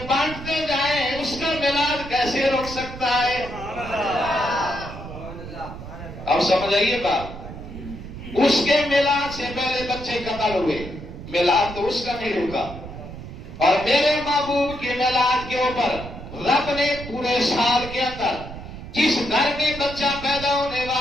بانٹتے جائیں اس کا میلاد کیسے رک سکتا ہے؟ اب سمجھ آئیے بات. اس کے میلاد سے پہلے بچے قتل ہوئے، میلاد تو اس کا نہیں رکا. اور میرے محبوب کے میلاد کے اوپر رب نے پورے سال کے اندر جس گھر میں بچہ پیدا ہونے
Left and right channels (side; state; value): right; noise; rumble, 12 dB below the sound